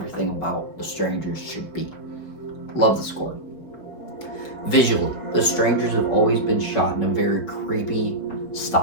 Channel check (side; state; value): right; late; 5.1 ms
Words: about the Strangers should be. Love the score. Visually, the Strangers have always been shot in a very creepy